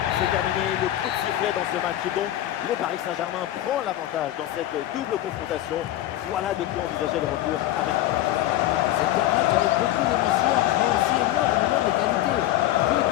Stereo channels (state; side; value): quieter; right; 13.9 dB